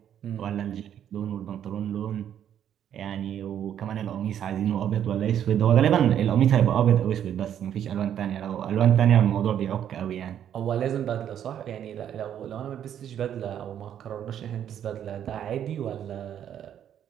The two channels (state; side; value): quieter; left; 9.8 dB